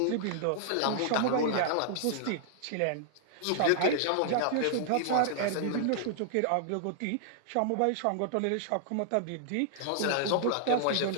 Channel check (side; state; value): both; different; correlation -0.01